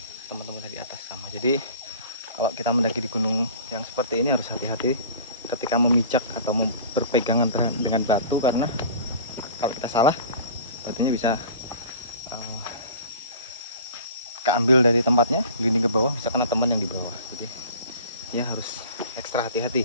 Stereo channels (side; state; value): both; inverted; correlation -0.42